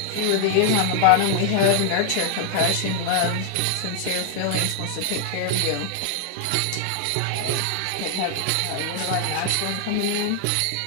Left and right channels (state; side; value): different; both; correlation 0.00